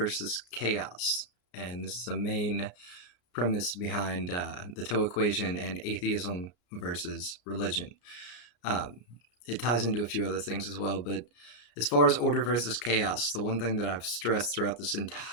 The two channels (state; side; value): late; right; 33 ms